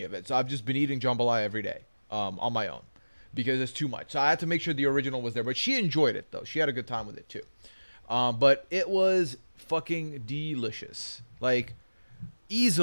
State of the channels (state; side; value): inverted; both; correlation -1.00